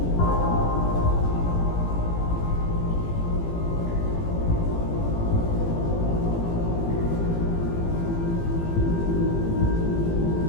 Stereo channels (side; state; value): right; late; 18 ms